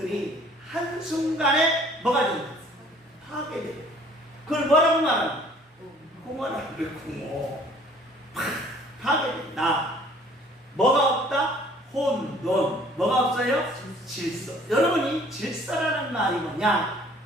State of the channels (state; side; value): normal; both; correlation 0.55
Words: 한순간에 뭐가 된다? 파괴돼요. 그걸 뭐라고 말하나? 공허라고 그래. 공허. 파괴된다. 뭐가 없다? 혼돈. 뭐가 없어요? 질서. 여러분이 질서라는 말이 뭐냐?